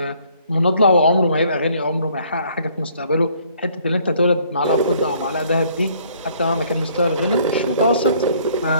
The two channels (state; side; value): inverted; both; correlation -0.61